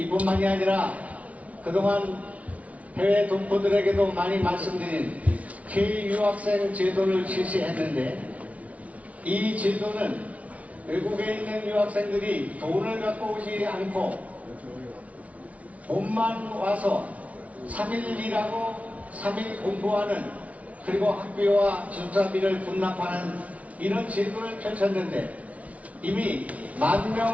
아니라 그동안 해외 동포들에게도 많이 말씀드린 K-유학생 제도를 실시했는데 이 제도는 외국에 있는 유학생들이 돈을 갖고 오지 않고 돈만 와서 3일 일하고 3일 공부하는 그리고 학비와 기숙사비를 분납하는 이런 제도를 펼쳤는데 이미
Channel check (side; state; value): left; late; 0.067 ms